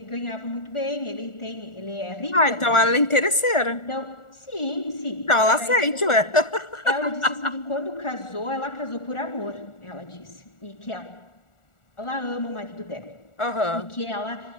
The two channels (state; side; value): late; right; 1.4 ms